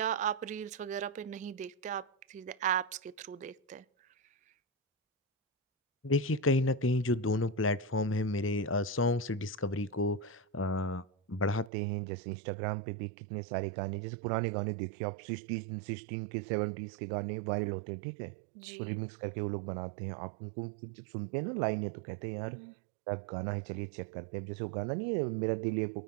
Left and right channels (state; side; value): drops out; left; at 11.7 s